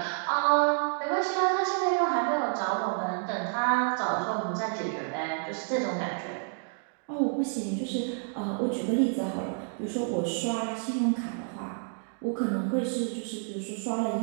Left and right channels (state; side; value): silent; left; 58 dB below the other